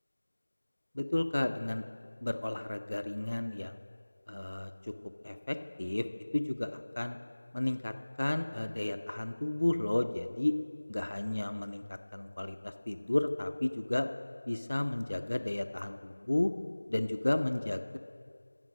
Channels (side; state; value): both; inverted; correlation -1.00